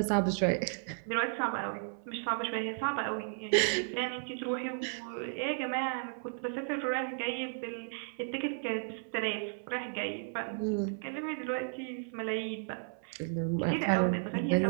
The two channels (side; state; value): left; silent; 55 dB below the other